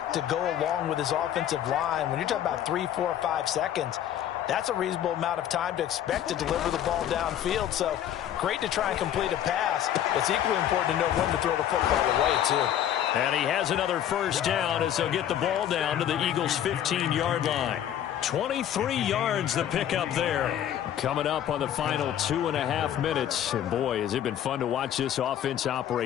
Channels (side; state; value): right; quieter; 10.8 dB